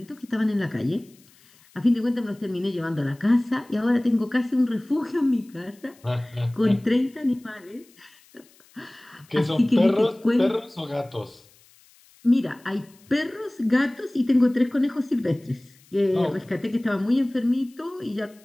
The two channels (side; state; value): left; noise; hiss, 29 dB below the sound